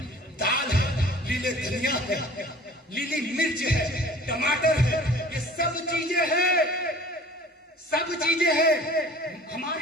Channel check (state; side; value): normal; both; correlation 0.46